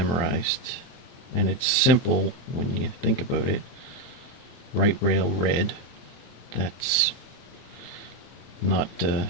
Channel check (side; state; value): right; late; 24 ms